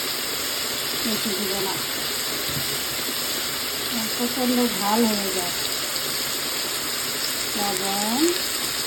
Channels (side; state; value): both; identical; correlation 1.00